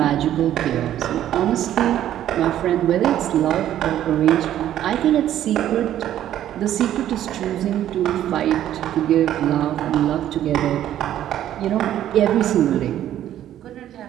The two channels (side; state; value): left; quieter; 11.8 dB